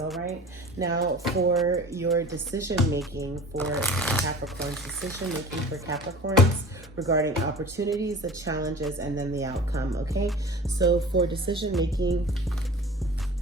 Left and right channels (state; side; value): normal; both; correlation 0.40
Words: right, now for your decision making for Capricorns, decision making for Capricorns regarding opportunities, the challenges, and then the outcome. Okay, so for decision making,